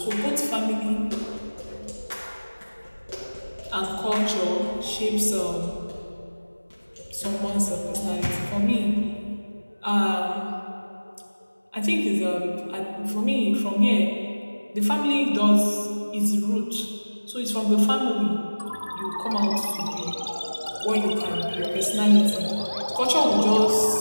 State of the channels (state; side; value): inverted; both; correlation -1.00